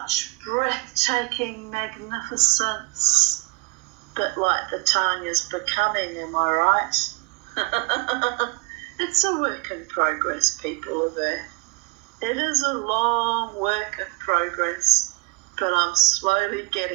breathtaking magnificence, bit like the Tanya's becoming, am I right? It's a work in progress, people of Earth. It is a long work in progress, but I'm slowly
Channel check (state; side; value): quieter; left; 25.3 dB